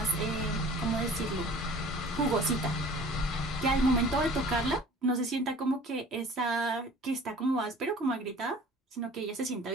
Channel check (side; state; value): both; normal; correlation 0.47